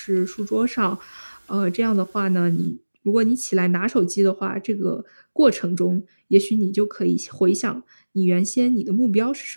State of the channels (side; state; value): both; inverted; correlation -1.00